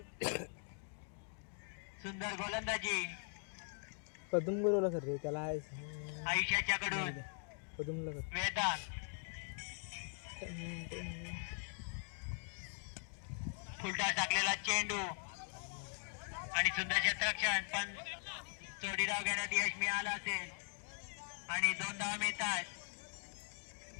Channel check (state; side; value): silent; right; 50 dB below the other